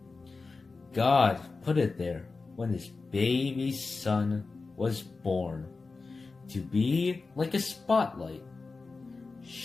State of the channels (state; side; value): quieter; right; 4.0 dB